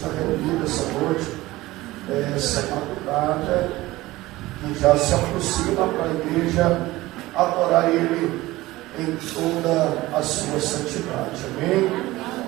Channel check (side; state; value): left; quieter; 18.4 dB